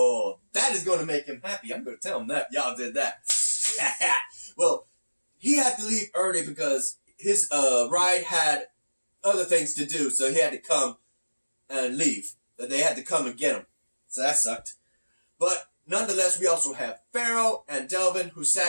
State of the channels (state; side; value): inverted; both; correlation -1.00